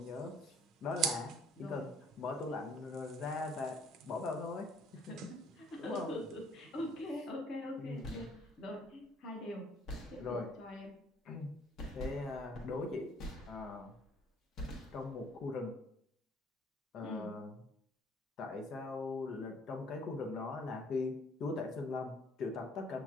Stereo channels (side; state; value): both; normal; correlation 0.59